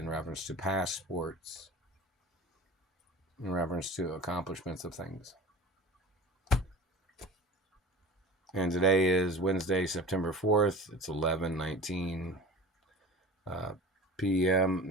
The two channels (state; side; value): normal; both; correlation 0.37